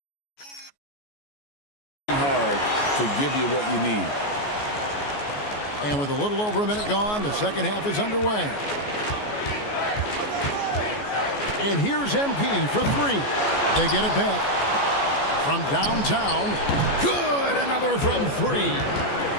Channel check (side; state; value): right; late; 14 ms